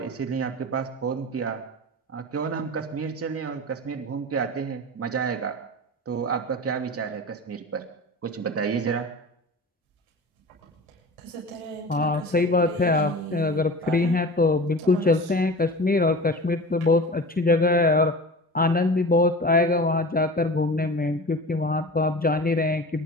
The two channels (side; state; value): both; normal; correlation 0.34